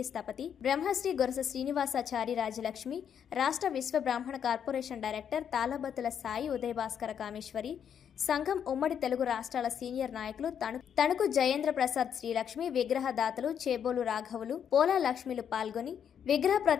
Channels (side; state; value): right; quieter; 8.3 dB